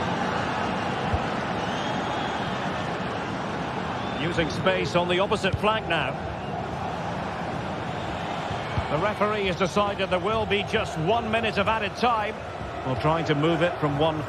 Using space on the opposite flank now. The referee has decided there will be just 1 minute of added time. Well, trying to move it from one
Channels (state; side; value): identical; both; correlation 1.00